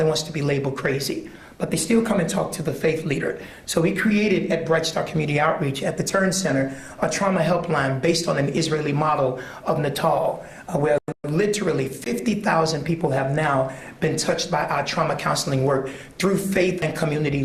wants to be labeled crazy, but they still come and talk to the faith leader. So we created at Bright Star Community Outreach at the Turn Center a trauma helpline based on an Israeli model of Natal, where literally 50,000 people have now been touched by our trauma counseling work through faith and community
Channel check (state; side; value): identical; both; correlation 1.00